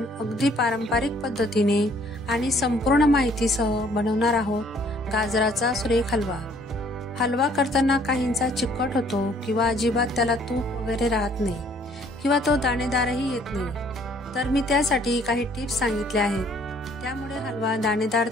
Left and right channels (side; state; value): both; normal; correlation 0.61